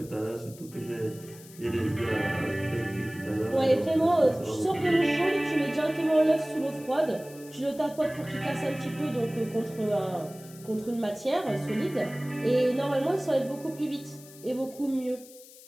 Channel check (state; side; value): noise; left; hiss, 20 dB below the sound